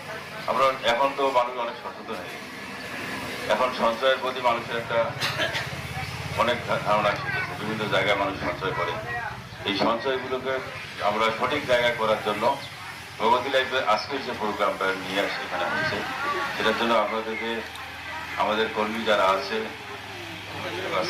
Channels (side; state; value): both; identical; correlation 1.00